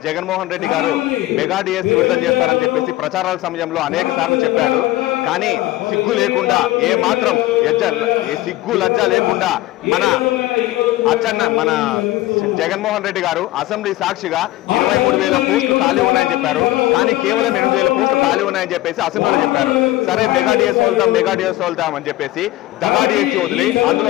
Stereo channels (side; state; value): right; quieter; 17.0 dB